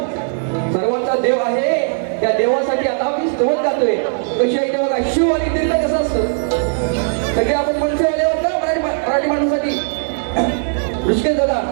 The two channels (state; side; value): silent; left; 58 dB below the other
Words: सर्वांचा देव आहे, त्या देवासाठी आता मी स्तोत्र गातोय. कशी आहे ते बघा, शिव आणि दिल्ला कसं असतं, सगळे आपण मनसेवाले होतो मराठी माणसासाठी. विजय दादा